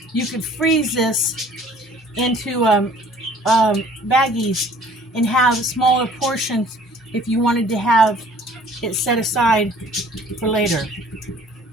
you could freeze this into baggies and have smaller portions if you wanted to have it set aside for later.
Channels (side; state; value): both; normal; correlation 0.53